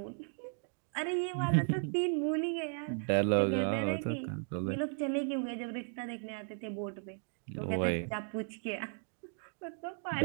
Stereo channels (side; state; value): left; silent; 54 dB below the other